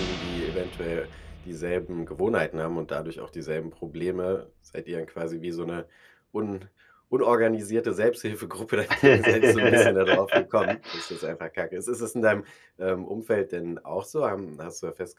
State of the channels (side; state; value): both; identical; correlation 1.00